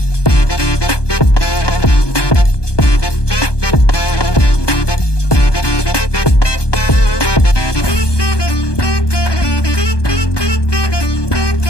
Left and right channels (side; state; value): right; late; 1.2 ms